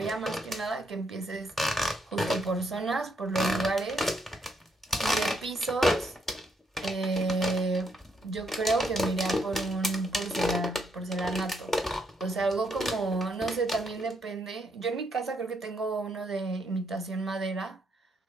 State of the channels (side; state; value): both; normal; correlation 0.75